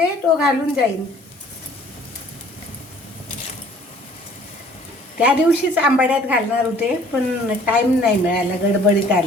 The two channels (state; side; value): normal; both; correlation 0.54